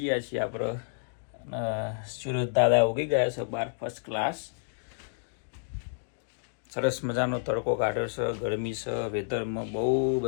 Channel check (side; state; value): right; silent; digital silence